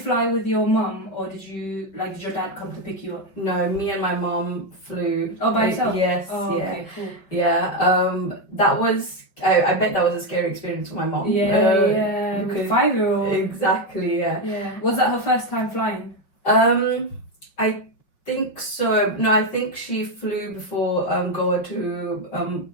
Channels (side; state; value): right; late; 5.3 ms